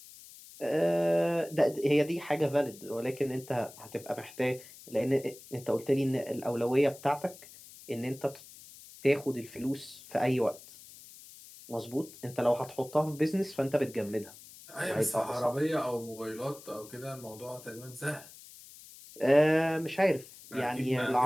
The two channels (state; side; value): noise; left; hiss, 19 dB below the sound